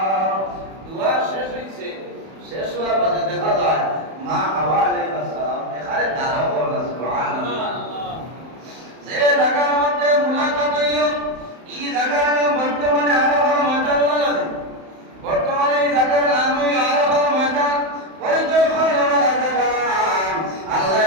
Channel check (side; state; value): left; late; 31 ms